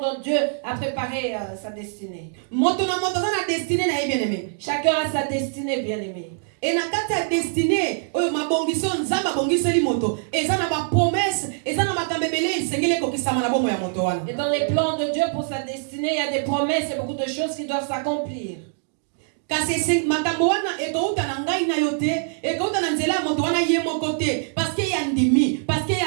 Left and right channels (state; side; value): silent; left; digital silence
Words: Dieu a préparé sa destinée. Moto na moto zana destinée na ye bien-aimé. Chacun a sa destinée, bien-aimé. Et na kati ya destinée oyo mabongiso nzamba bongiseli moto eza na ba promesse eza na makambebele isengele kokisama na bomoy ya moto wana. Et dans les plans de Dieu pour sa destinée, il y a des promesses et beaucoup de choses qui doivent s'accomplir. Kasi makambo wana ekouta na ngai na yo te ekouta na nzela ya moto wana ye moko te parce que ya ndimi parce que